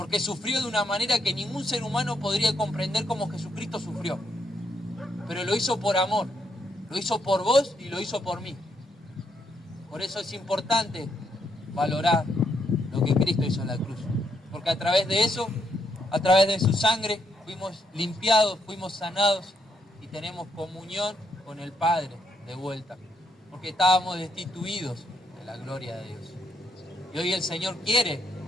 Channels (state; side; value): normal; both; correlation 0.76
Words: sufrió de una manera que ningún ser humano podría comprender como Jesucristo sufrió. Pero lo hizo por amor. Lo hizo por vos y lo hizo por mí. Por eso es importante valorar lo que Cristo hizo en la cruz. Porque a través de eso, a través de su sangre, fuimos limpiados, fuimos sanados y tenemos comunión con el Padre de vuelta. Porque estábamos destituidos de la gloria de Dios. Y hoy el Señor quiere